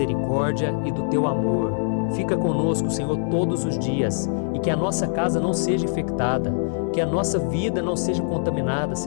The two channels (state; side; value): silent; right; 59 dB below the other